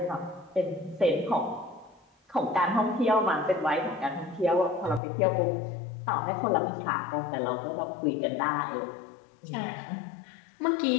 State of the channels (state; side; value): drops out; right; at 5.0 s